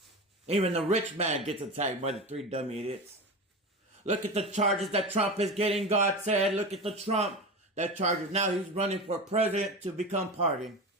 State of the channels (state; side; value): normal; both; correlation 0.25